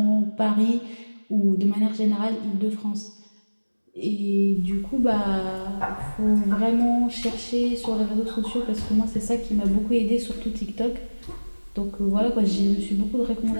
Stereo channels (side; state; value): both; inverted; correlation -1.00